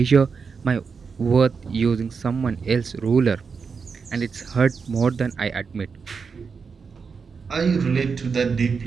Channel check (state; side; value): quieter; left; 5.4 dB